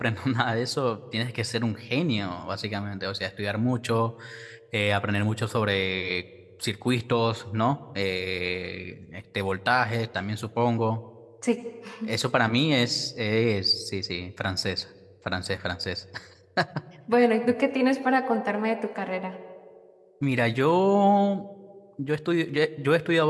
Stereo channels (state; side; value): identical; both; correlation 1.00